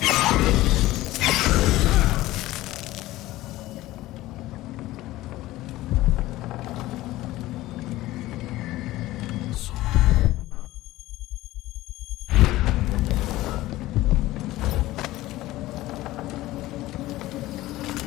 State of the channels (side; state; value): right; quieter; 17.0 dB